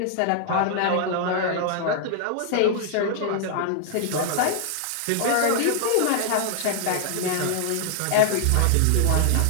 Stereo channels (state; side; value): different; both; correlation 0.00